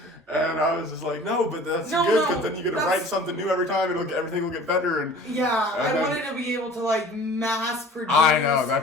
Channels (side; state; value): both; normal; correlation 0.46